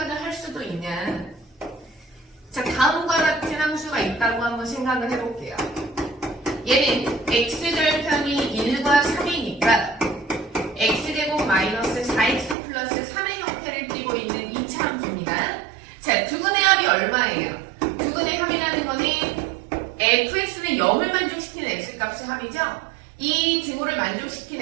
할 수도 있냐. 자, 다음과 같은 함수가 있다고 한번 생각을 해볼게요. 얘는 x절편이 1과 3이니까 x제곱 마이너스 4x 플러스 3의 형태를 띠고 있는 2차 함수입니다. 자, 두근의 합이 얼마예요? 두근의 합이라는 거는 fx는 0을 만족시키는 x값의 합이죠? 이 등호를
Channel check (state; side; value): drops out; left; at 12.6 s